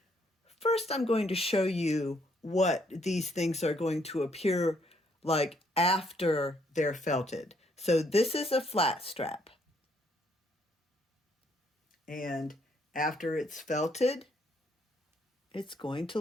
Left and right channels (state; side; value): normal; both; correlation 0.70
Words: First, I'm going to show you what these things are going to appear like after they're felted. So this is a flat strap. And after it's felted, it's going to